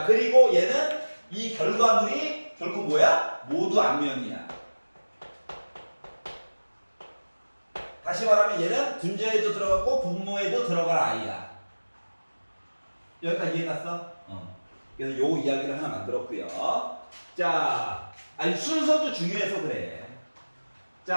그리고 얘는 이 결과물이 결국 뭐야? 모두 앞면이야. 다시 말하면 얘는 분자에도 들어갔고 분모에도 들어갈 아이야. 여기까지 이해갔어? 그래서 요 이야기를 하나 만들었고요. 자, 아니 순서도 중요해서 그래.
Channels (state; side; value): inverted; both; correlation -1.00